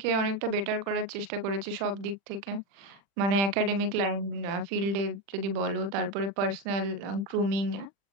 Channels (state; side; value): late; left; 40 ms